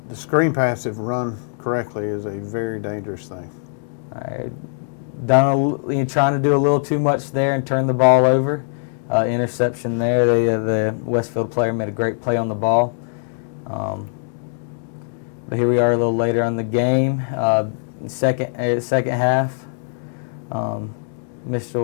The screen pass, if run correctly, is a very dangerous thing. All right. Trying to do a little too much there and turn the ball over. Interception there. The Westfield player made a great play on the ball. But here we are a little later on the game. Second half.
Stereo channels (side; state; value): right; silent; digital silence